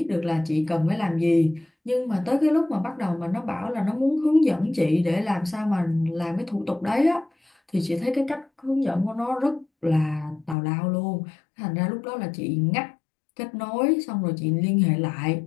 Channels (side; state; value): right; drops out; at 10.6 s